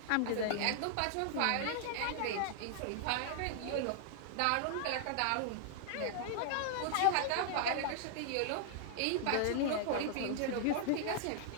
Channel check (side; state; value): both; different; correlation -0.01